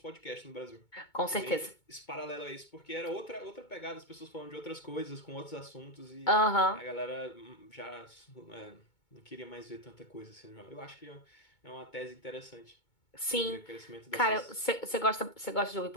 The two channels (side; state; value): right; late; 2.2 ms